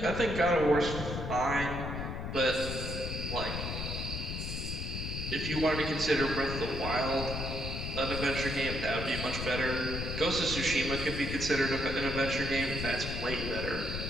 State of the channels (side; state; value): left; noise; rumble, 4 dB below the sound